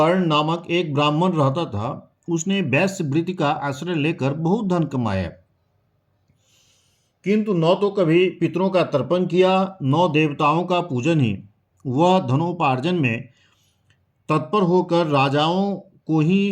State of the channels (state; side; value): identical; both; correlation 1.00